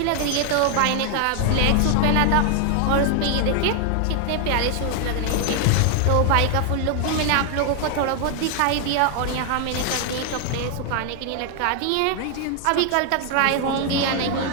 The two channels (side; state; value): both; different; correlation 0.00